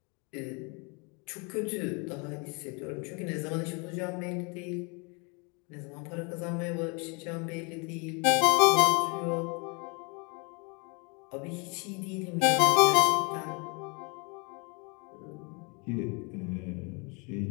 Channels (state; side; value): quieter; right; 32.5 dB